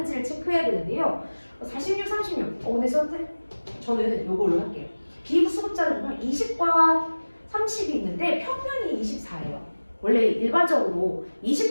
체크해야 되는데요. 46, 36. 근데 저는 이걸로 할게요. 비부수급자를 보면 20과 30이 있는데 평균이 24예요. 원래 일반적으로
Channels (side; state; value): both; inverted; correlation -1.00